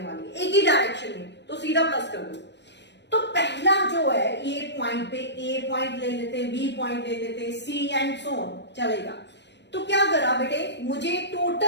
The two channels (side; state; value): right; late; 0.50 ms